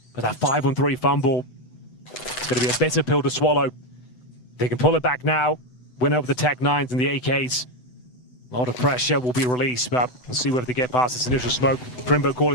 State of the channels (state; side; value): late; right; 8.0 ms